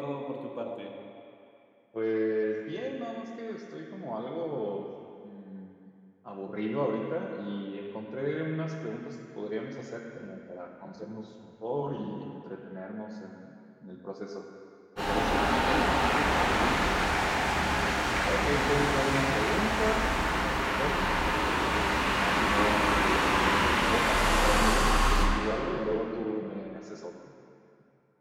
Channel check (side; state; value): both; identical; correlation 1.00